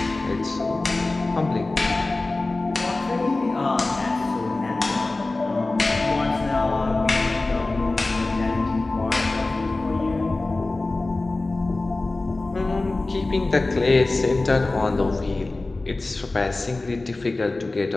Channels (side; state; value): right; quieter; 3.1 dB